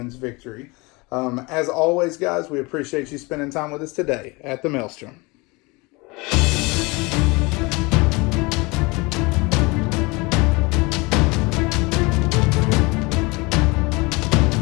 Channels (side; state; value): right; quieter; 25.8 dB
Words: victory. As always, guys, we appreciate you spending time with us today at the Maelstrom.